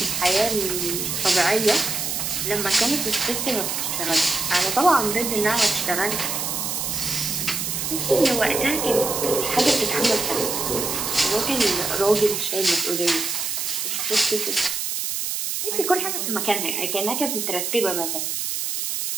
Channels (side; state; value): right; noise; hiss, 2 dB below the sound